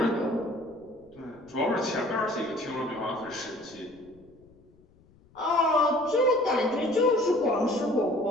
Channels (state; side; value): noise; left; rumble, 29 dB below the sound